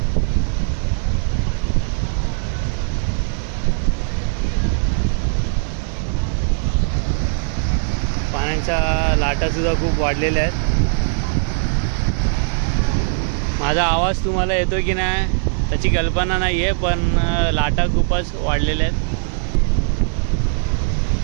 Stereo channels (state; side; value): silent; left; digital silence